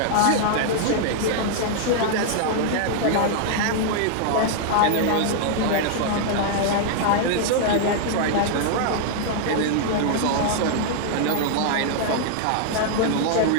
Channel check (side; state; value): both; different; correlation -0.01